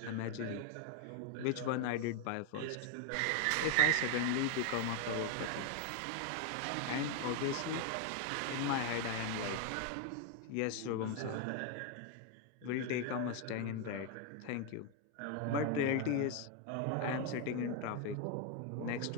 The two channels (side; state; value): both; different; correlation 0.01